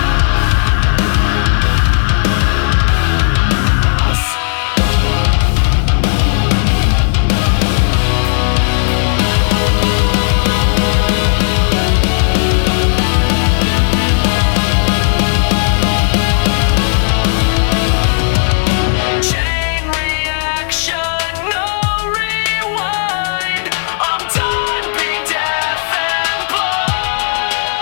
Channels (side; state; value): right; silent; digital silence